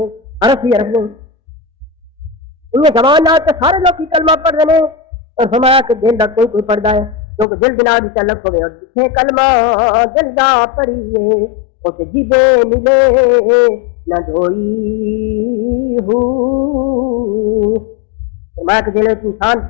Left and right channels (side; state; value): right; drops out; at 7.5 s